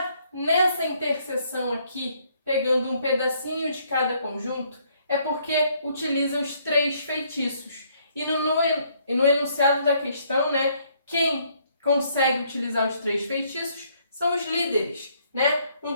nessa interseção aqui, pegando um pedacinho de cada conjunto, é porque utiliza os 3 feitiços. E no enunciado da questão, né, quem consegue utilizar os 3 feitiços são os líderes, né?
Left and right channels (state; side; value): inverted; both; correlation -0.68